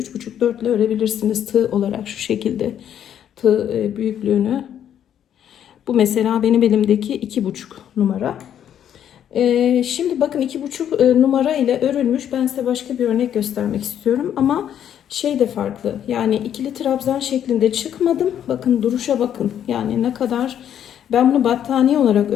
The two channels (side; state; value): right; quieter; 9.8 dB